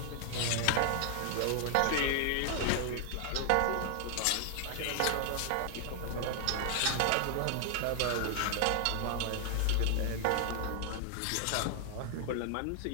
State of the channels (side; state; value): both; different; correlation 0.00